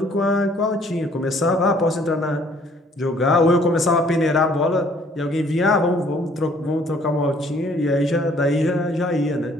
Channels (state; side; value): normal; both; correlation 0.60